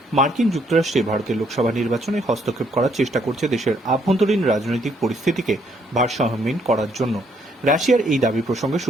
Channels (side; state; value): both; normal; correlation 0.69